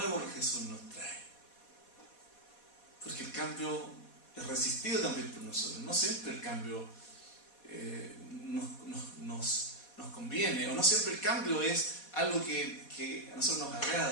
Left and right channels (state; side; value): late; right; 4.2 ms